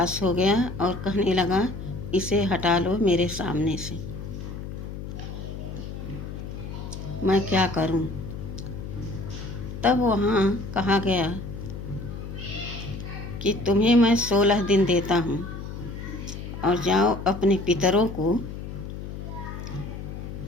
हो गया और कहने लगा, इसे हटा लो मेरे सामने से, मैं क्या करूं। तब वहाँ कहा गया कि तुम्हें मैं 16 दिन देता हूँ और जाओ अपने पितरों को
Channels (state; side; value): noise; left; hum, 8 dB below the sound